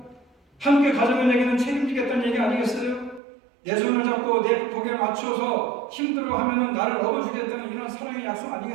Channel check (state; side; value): drops out; left; at 3.2 s